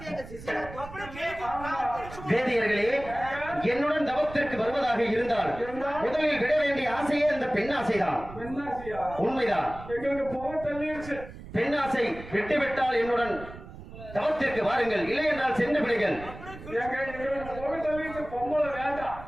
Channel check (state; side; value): noise; right; rumble, 14 dB below the sound